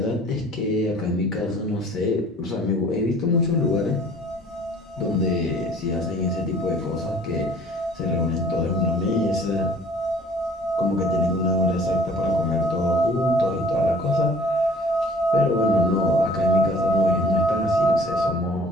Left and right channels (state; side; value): normal; both; correlation 0.52